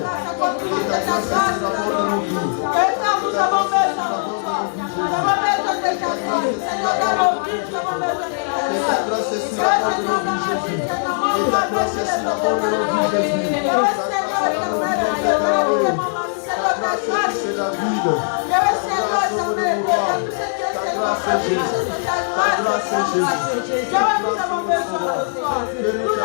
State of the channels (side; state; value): right; silent; digital silence